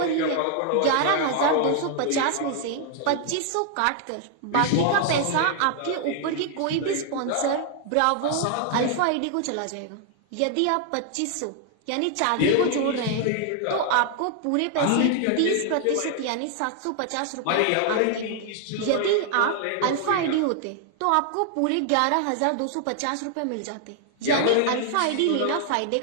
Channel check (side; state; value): both; different; correlation 0.00